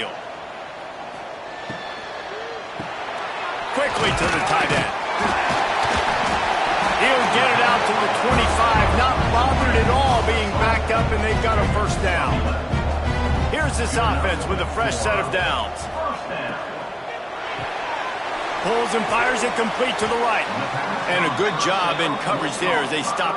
Quickly to the tight end. He'll get it out to the 25, not bothered at all being backed up, and they've got a first down. Here's this offense with a fresh set of downs. Pulls and fires it complete to the right. And a good job in coverage there as they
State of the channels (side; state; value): both; identical; correlation 1.00